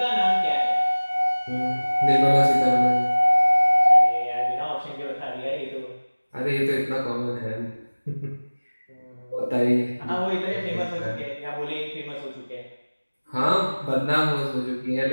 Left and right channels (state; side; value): inverted; both; correlation -1.00